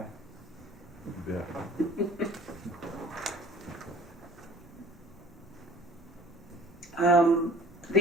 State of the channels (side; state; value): both; normal; correlation 0.50